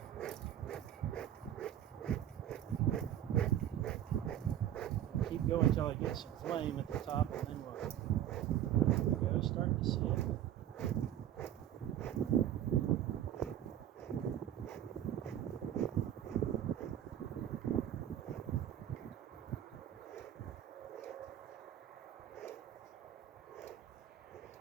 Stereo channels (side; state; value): left; quieter; 11.2 dB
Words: Keep going until I get some flame at the top, and then we'll start to see it.